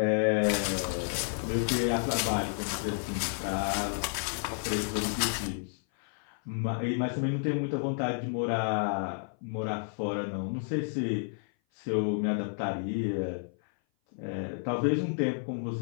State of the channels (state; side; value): silent; right; 56 dB below the other